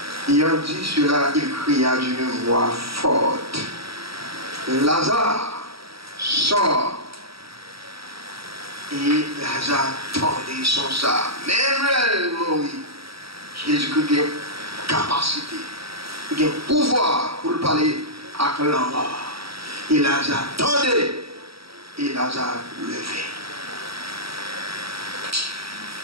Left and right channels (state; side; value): late; left; 0.76 ms